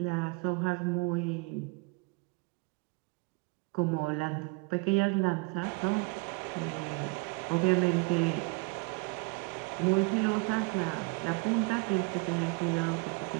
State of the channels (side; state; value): left; quieter; 29.3 dB